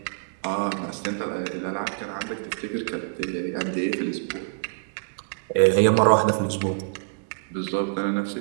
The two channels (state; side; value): silent; left; digital silence